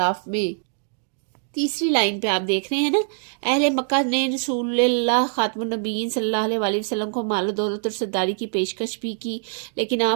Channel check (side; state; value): left; silent; digital silence